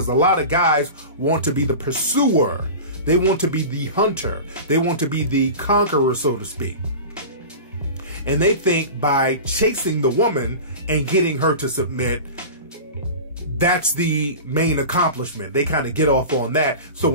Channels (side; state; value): both; inverted; correlation -0.32